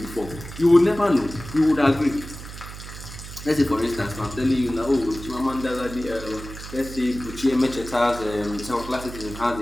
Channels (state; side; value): noise; right; hum, 12 dB below the sound